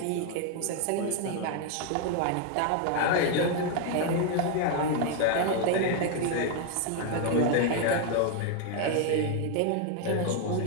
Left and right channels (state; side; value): different; both; correlation 0.01